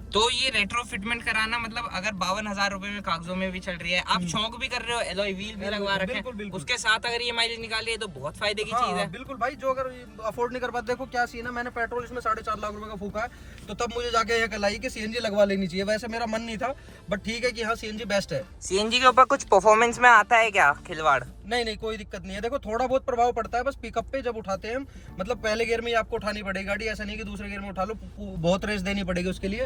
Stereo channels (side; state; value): both; identical; correlation 1.00